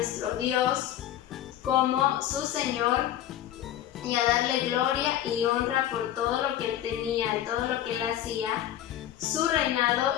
Dios como su Señor y a darle gloria y honra por todo lo que él tenía y todo lo que él hacía, su reinado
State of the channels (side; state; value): right; quieter; 12.0 dB